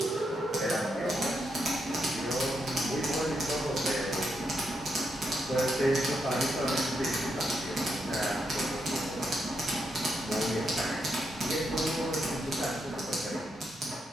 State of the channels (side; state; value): both; normal; correlation 0.81